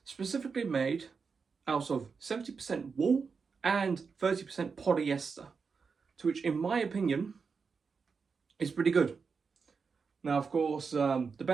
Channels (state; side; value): quieter; left; 5.3 dB